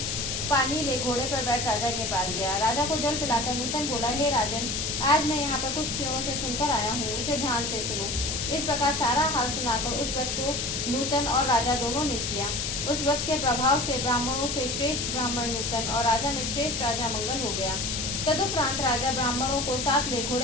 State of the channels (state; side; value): noise; left; hiss, 2 dB below the sound